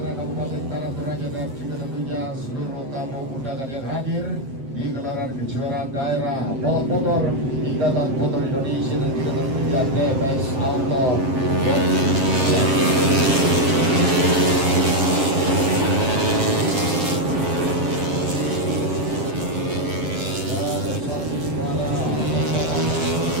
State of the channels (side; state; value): left; late; 7.6 ms